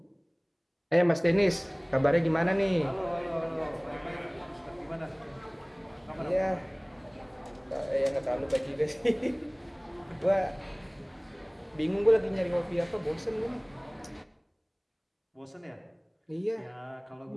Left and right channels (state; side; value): identical; both; correlation 1.00